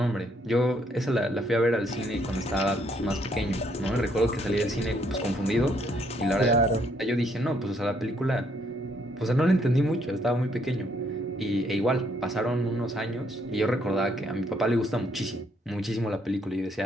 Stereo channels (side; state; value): both; normal; correlation 0.70